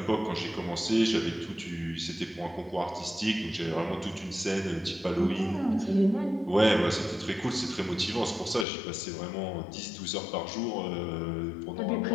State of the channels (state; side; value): drops out; right; at 8.7 s